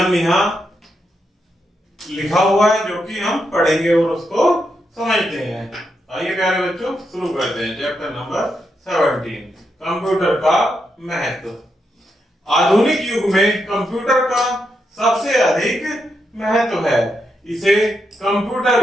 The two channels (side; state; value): both; normal; correlation 0.83